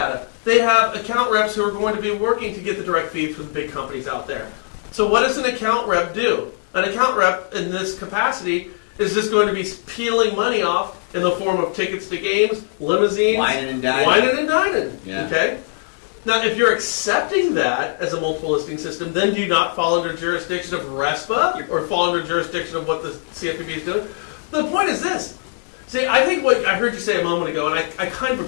They have account reps who are going to be working to get the direct feed from the big companies out there. So what does an account rep do? An account rep in this capacity is just going to be peeling money off in the form of tickets to games, limousines, whining and dining. Yeah. Okay? Now, if you're accepting that as a multiple listing system, then do you not fall under jurisdiction of RESPA or fall under jurisdiction of what the CFPB is doing? The point is this. See, I think what I heard you say a moment ago, and I kind of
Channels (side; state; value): right; silent; digital silence